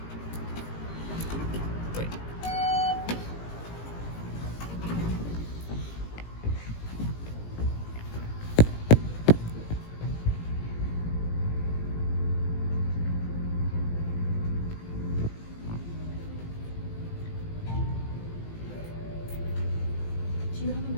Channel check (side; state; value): right; late; 18 ms